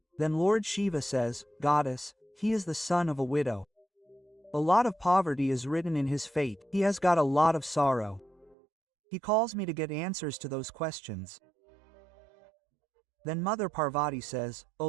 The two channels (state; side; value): drops out; left; at 8.6 s